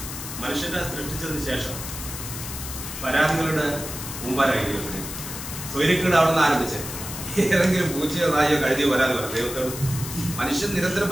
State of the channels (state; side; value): noise; left; hiss, 8 dB below the sound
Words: മനുഷ്യനെ സൃഷ്ടിച്ചതിന് ശേഷം പരാതികളുടെ മുമ്പാരായി ദൈവത്തിന് സ്വൈര്യക്കേട് അവിടെ നിന്ന് ആരംഭിച്ചത്. ഏതെങ്കിലും പൂച്ചയോ നായോ കഴുതിയോ പരാതി പറയാം ദൈവത്തോട്. മനുഷ്യൻ നിരന്തരം